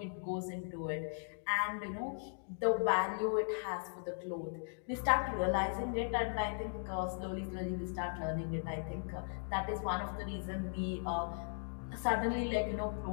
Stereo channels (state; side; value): silent; right; digital silence